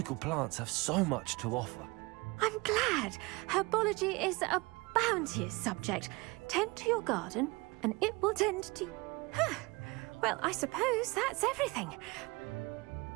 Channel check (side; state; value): left; quieter; 24.9 dB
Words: plants have so much to offer. I'm glad. Herbology is a bounteous subject. Tend to your garden, and it will tend to you. Huh. Well, I suppose that's everything.